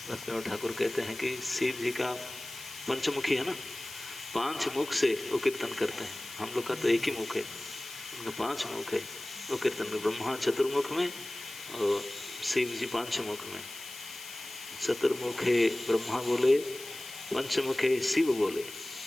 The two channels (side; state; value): left; noise; hiss, 13 dB below the sound